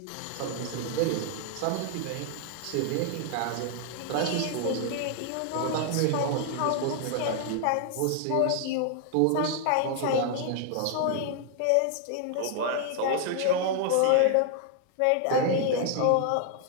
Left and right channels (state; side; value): different; both; correlation 0.00